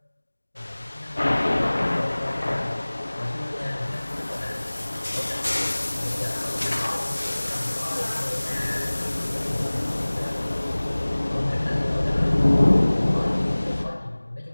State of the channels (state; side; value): inverted; both; correlation -1.00